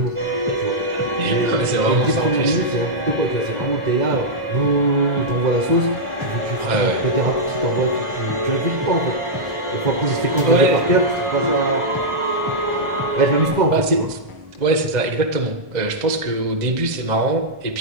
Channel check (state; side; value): late; left; 2.0 ms